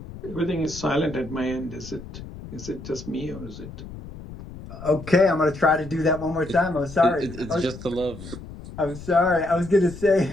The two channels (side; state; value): left; noise; rumble, 13 dB below the sound